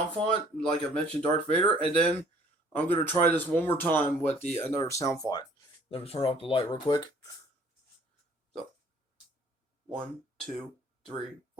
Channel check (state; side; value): normal; both; correlation 0.56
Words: font, like I mentioned, Darth Vader, and then I'm gonna try this one more time with the another sound font. Let me turn off the light real quick. So 1, 2, 3,